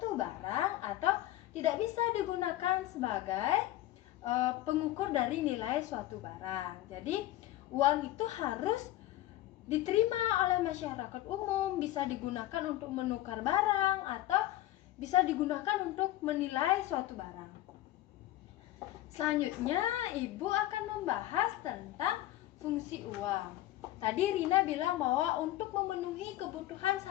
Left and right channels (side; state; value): right; quieter; 15.2 dB